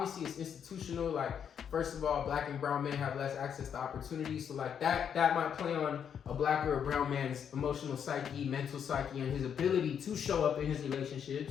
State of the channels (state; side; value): quieter; right; 8.0 dB